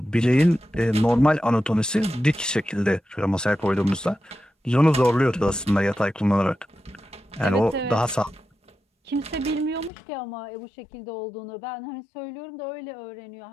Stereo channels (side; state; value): right; drops out; at 9.9 s